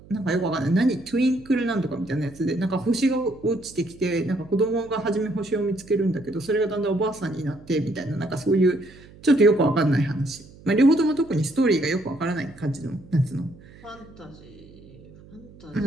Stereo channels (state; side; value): noise; right; hum, 22 dB below the sound